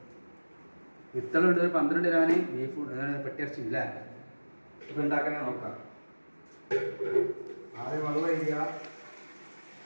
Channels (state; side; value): inverted; both; correlation -1.00